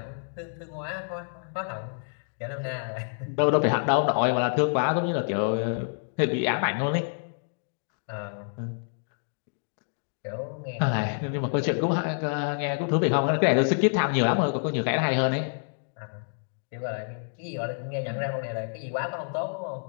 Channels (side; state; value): right; silent; digital silence